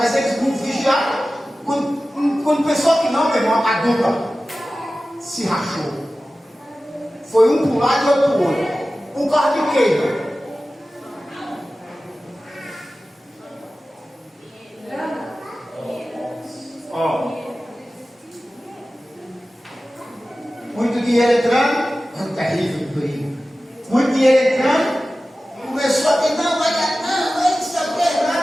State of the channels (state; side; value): normal; both; correlation 0.96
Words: eles não vigiaram. Quando pensou que não, meu irmão, a dupla se rachou. Foi um para um lado e outro para o outro. Um carro de queima. Ó. Muito dinheiro entrando, é um terrível perigo. Muito dinheiro entrando, começou a dizer, não, vai dar, não sei o que,